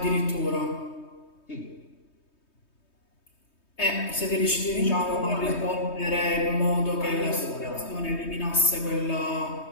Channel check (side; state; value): right; late; 3.2 ms